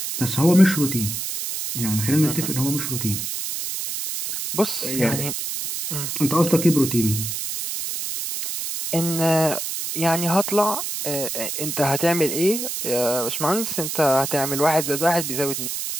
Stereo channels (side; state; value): right; noise; hiss, 4 dB below the sound